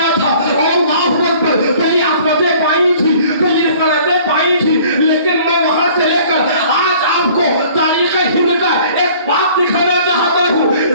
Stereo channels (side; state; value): both; inverted; correlation -0.52